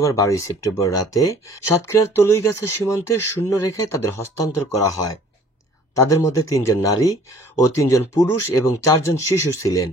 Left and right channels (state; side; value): normal; both; correlation 0.53